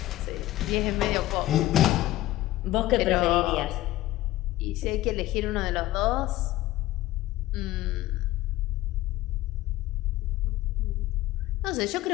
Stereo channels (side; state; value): right; quieter; 16.1 dB